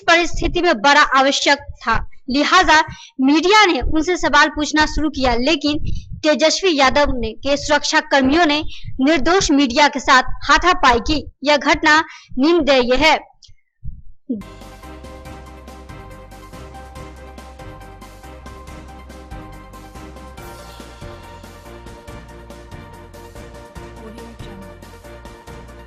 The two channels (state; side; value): identical; both; correlation 1.00